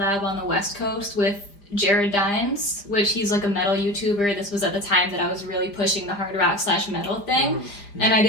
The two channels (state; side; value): late; right; 5.0 ms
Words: on the West Coast with Jared Dines, which he's like a metal YouTuber. This was at the time that I was really pushing the hard rock / metal thing. And I